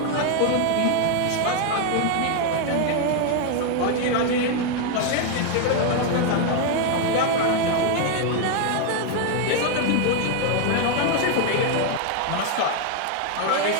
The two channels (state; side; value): different; both; correlation 0.01